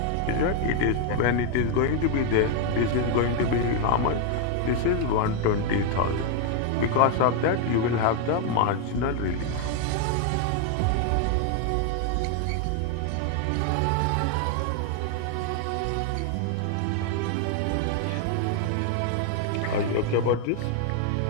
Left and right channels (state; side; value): different; both; correlation 0.00